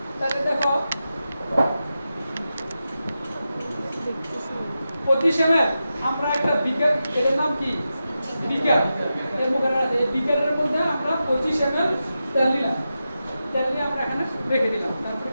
তাহলে দেখো 25 ml আমরা একটা বিকার এর নাম কি বিকার এর মধ্যে এই বিকারের মধ্যে আমরা 25 ml তেল নিলাম তেল নিয়ে আমরা এখানে রেখে দিলাম তারপর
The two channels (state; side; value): inverted; both; correlation -0.90